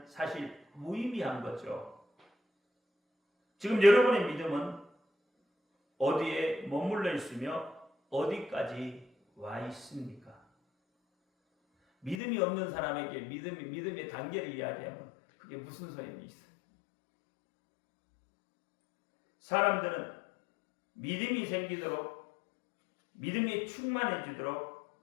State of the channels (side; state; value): right; drops out; at 12.2 s